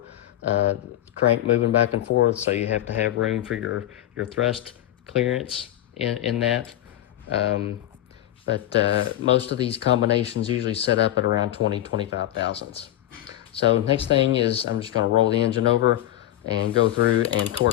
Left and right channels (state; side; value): quieter; right; 13.2 dB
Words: crank moving back and forth, so you have to have room for your thrust clearance in that. But most of these combinations usually set up at around 20, 25 thousandths. So next thing is I'm just going to roll the engine over and go through and